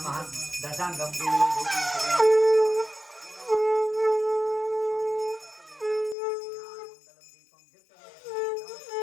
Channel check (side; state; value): right; drops out; at 6.2 s